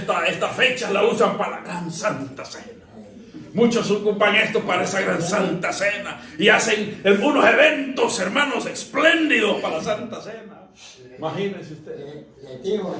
fecha la usan para la gran Santa Cena. Muchos ocupan esto para esa gran Santa Cena y hacen unos eventos, hermanos, espléndidos para la Santa Cena. Imagínense ustedes. Le digo,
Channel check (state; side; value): identical; both; correlation 1.00